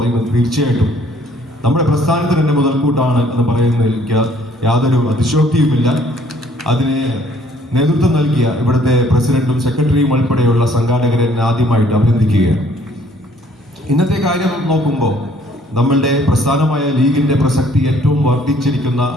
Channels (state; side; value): normal; both; correlation 0.61